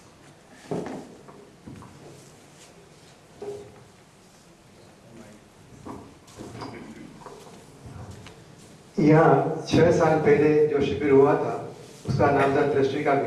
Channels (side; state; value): both; identical; correlation 1.00